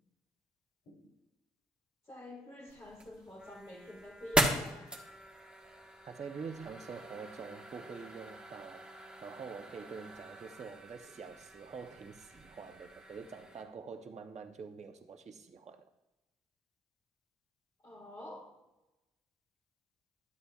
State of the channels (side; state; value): both; normal; correlation 0.61